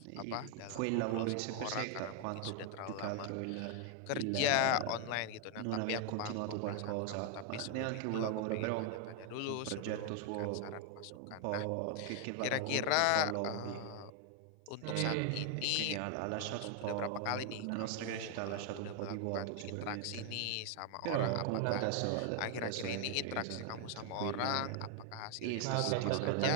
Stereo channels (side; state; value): both; different; correlation 0.00